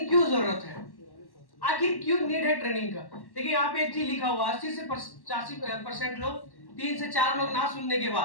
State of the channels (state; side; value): late; right; 1.1 ms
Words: क्यों जरूरत है, आखिर क्यों नीड है ट्रेनिंग का? देखिए यहाँ पे एक चीज लिखा हुआ, 80 से 85% लोग, 3 से 4 लोग ना सुनने के